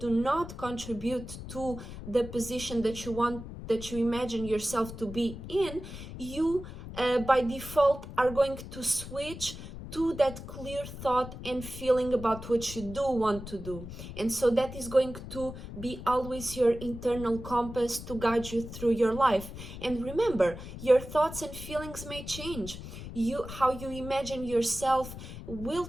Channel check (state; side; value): noise; left; rumble, 11 dB below the sound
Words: not contribute to the position that you want, that you imagine yourself to be in, you by default are going to switch to that clear thought and feeling about what you do want to do. And so that is going to be always your internal compass to guide you through your life. And remember, your thoughts and feelings may change. How you imagine yourself will